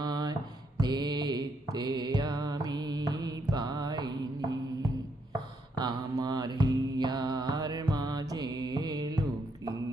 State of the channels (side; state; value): both; normal; correlation 0.76